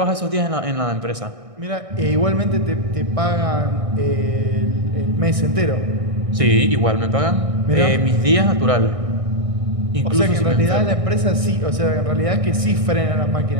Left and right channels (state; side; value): late; left; 1.6 ms